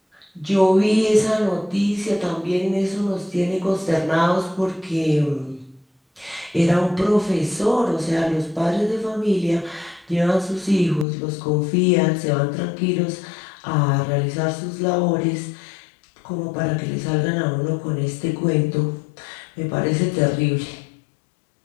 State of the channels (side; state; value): right; drops out; at 11.1 s